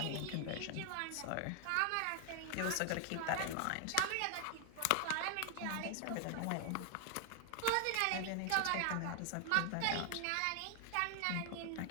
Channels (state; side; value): different; both; correlation 0.00